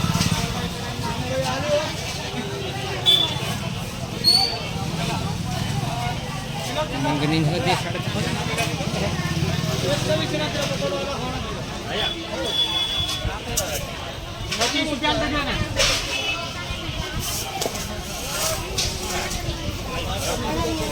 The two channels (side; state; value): both; identical; correlation 1.00